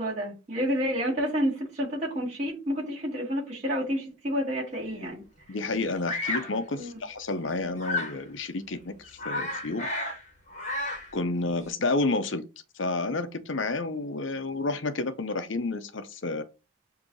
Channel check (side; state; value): both; normal; correlation 0.16